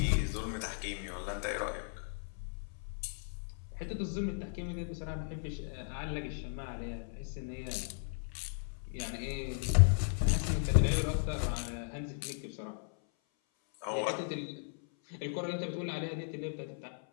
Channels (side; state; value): right; silent; 54 dB below the other